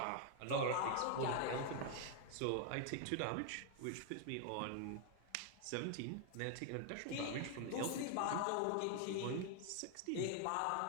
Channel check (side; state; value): both; different; correlation 0.00